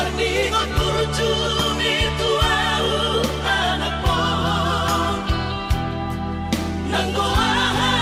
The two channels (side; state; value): both; identical; correlation 1.00